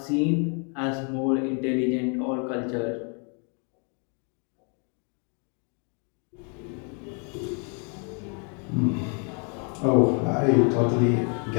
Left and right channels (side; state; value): right; quieter; 38.9 dB